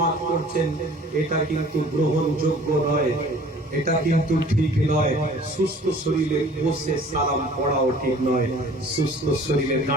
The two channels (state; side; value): normal; both; correlation 0.50